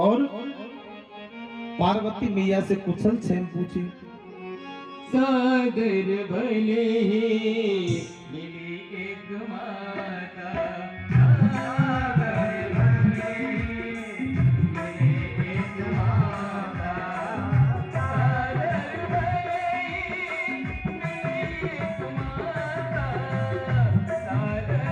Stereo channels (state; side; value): identical; both; correlation 1.00